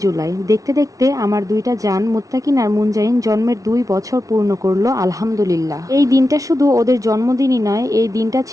জুলাই। দেখতে দেখতে আমার দুইটা জান মুত্তাকিন আর মুনজাইন জন্মের ২ বছর পূর্ণ করলো, আলহামদুলিল্লাহ। এই দিনটা শুধু ওদের জন্মদিনই নয়, এই দিনটা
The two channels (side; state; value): left; late; 0.17 ms